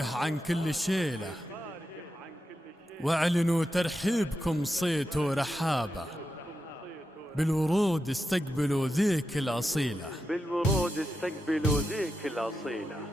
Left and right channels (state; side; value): normal; both; correlation 0.89